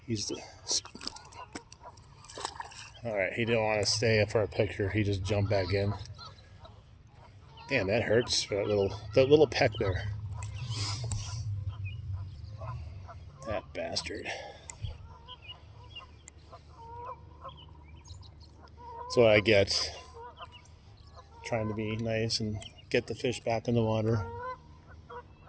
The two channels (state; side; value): identical; both; correlation 1.00